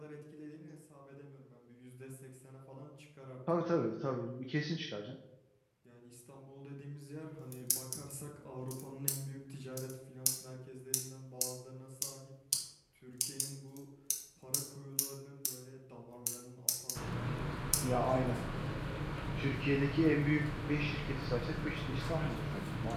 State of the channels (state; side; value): identical; both; correlation 1.00